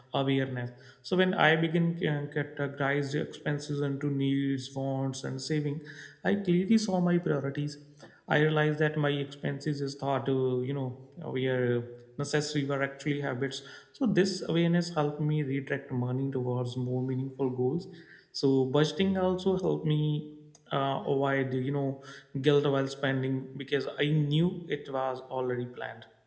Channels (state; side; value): identical; both; correlation 1.00